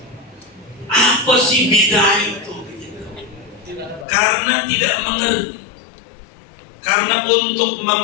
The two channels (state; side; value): drops out; right; at 4.0 s